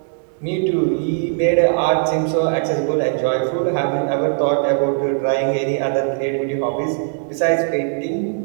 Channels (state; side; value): silent; left; digital silence